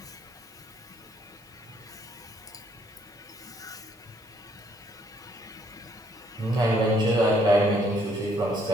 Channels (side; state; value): both; normal; correlation 0.67